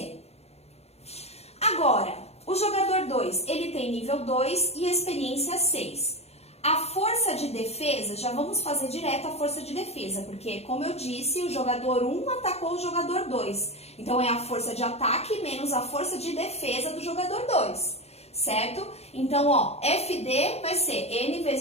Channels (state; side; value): late; right; 0.30 ms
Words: Agora, o jogador 2, ele tem nível 2 e experiência 6. A força de defesa, já vamos fazer direto a força de defesa, porque, como eu disse, o jogador 1 atacou o jogador 2. Então, é a força de ataque menos a força de defesa do jogador 2, certo? Então, ó, FD vai ser N